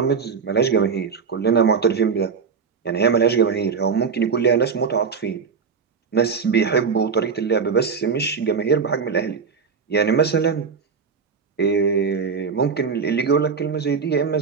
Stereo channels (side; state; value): left; quieter; 5.8 dB